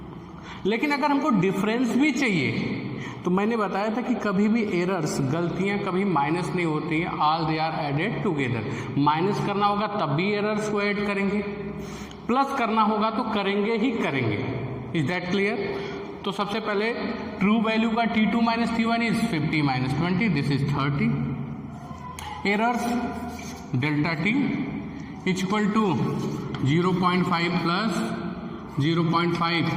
लेकिन अगर हमको डिफरेंस भी चाहिए तो मैंने बताया था कि कभी भी एरर्स, गलतियां कभी माइनस नहीं होती हैं. All they are added together. Minus करना होगा तब भी एरर्स को ऐड करेंगे, प्लस करना होगा तो करेंगे ही करेंगे. Is that clear. तो सबसे पहले ट्रू वैल्यू का T2 minus T1 is 50 minus 20, this is 30. Errors delta T equal to 0.5 plus 0.5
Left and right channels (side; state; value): both; identical; correlation 1.00